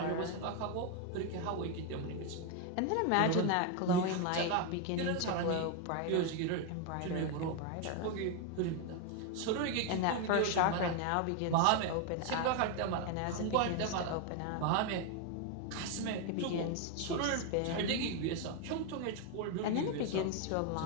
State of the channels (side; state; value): both; different; correlation 0.01